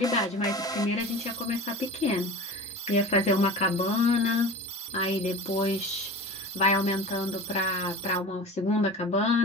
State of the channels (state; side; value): normal; both; correlation 0.34